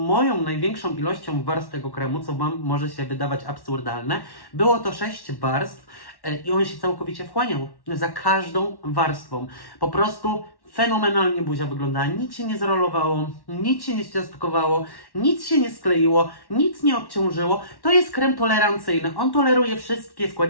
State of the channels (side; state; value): right; late; 1.1 ms